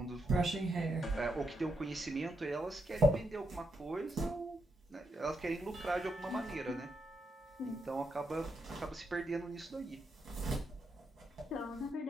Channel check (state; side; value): normal; both; correlation 0.82